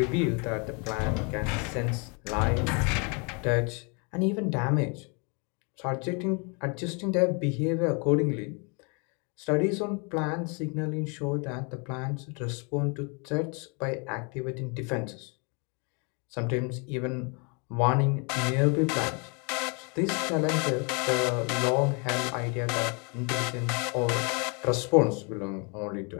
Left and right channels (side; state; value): right; quieter; 33.9 dB